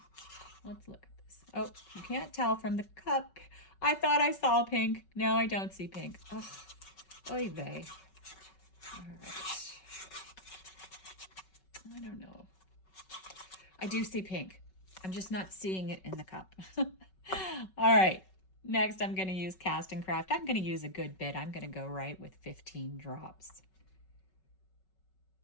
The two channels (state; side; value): late; right; 5.3 ms